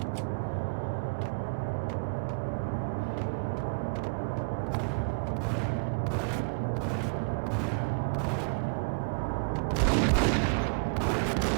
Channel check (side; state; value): left; quieter; 37.7 dB